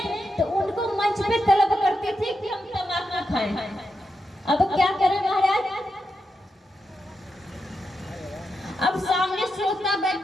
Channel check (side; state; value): both; normal; correlation 0.86